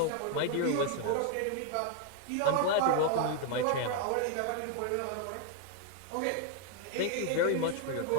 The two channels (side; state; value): both; different; correlation 0.00